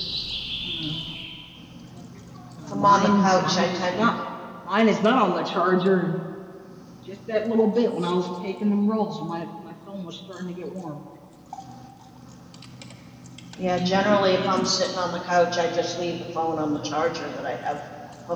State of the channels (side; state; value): both; identical; correlation 1.00